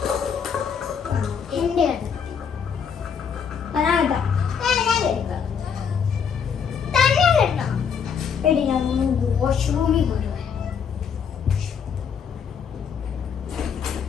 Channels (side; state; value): right; quieter; 7.0 dB